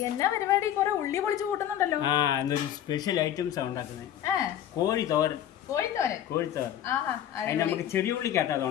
എന്നാ പരിപാടി? കുറെ ഉള്ളി പൊളിച്ച് കൂട്ടുന്നുണ്ടല്ലോ. എന്നൊരു സ്പെഷ്യൽ ഐറ്റംസ് ഉണ്ടാക്കുന്നത്. കോഴി തോരൻ. കോഴി തോരൻ. അതിന് നമുക്ക് ചെറിയ ഉള്ളിക്കകത്ത് അത്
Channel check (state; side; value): quieter; right; 10.9 dB